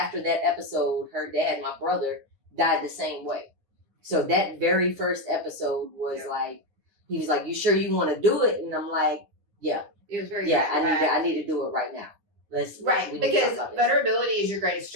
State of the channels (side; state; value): left; late; 9.8 ms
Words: that episode, her dad, my brother, died the same way. So that very first episode was Yeah. like, he was like, you sure you want to do it? And I'm like, yeah, It was very I bad. need to do it right now. Right. we need to Because talk about this. vulnerability is your greatest